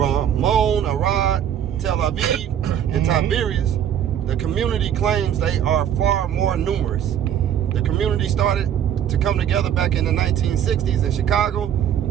Arad, Tel Aviv, and Tiberias. The community claims they are far more numerous. The community started to come together back in the 1960s in Chicago,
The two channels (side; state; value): left; quieter; 9.7 dB